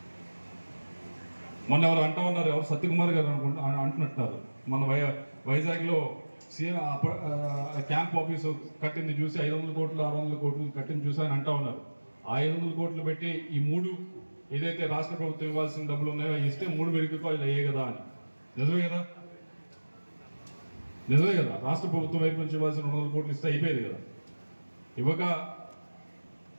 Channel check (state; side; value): inverted; both; correlation -1.00